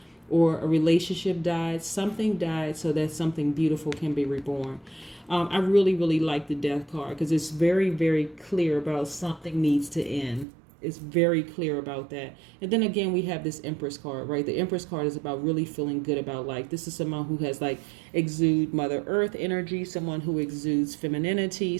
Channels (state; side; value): drops out; left; at 10.5 s